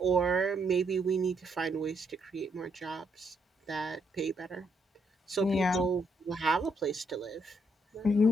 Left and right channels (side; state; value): both; normal; correlation 0.75